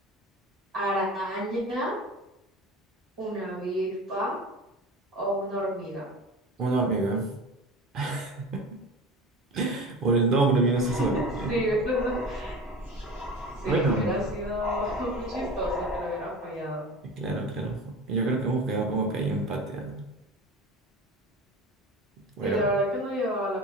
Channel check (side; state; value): both; normal; correlation 0.33